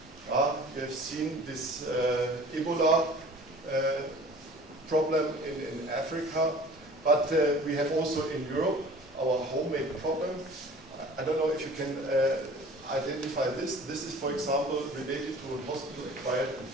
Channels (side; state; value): both; normal; correlation 0.46